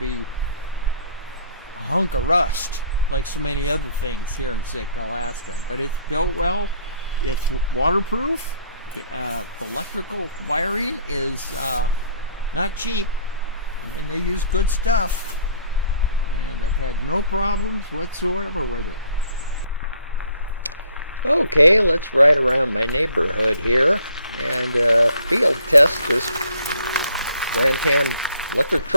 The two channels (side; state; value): both; inverted; correlation -0.60